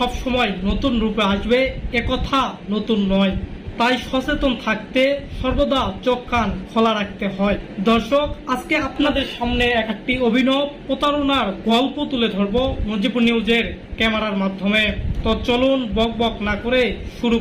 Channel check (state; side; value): identical; both; correlation 1.00